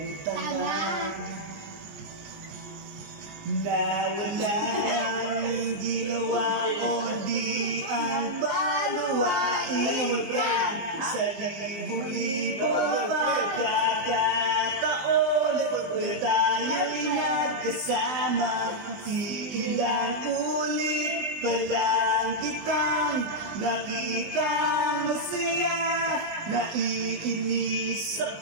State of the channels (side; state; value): left; late; 20 ms